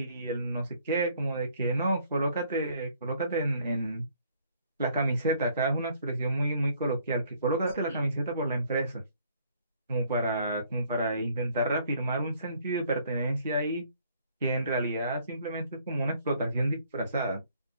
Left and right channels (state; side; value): inverted; both; correlation -0.62